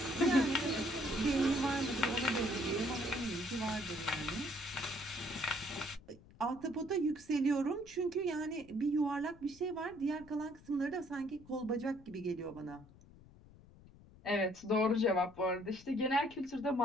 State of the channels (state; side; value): noise; left; rumble, 23 dB below the sound